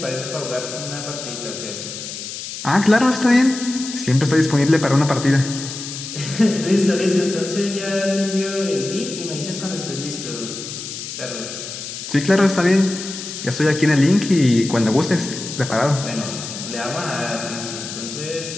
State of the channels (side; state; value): left; noise; hiss, 9 dB below the sound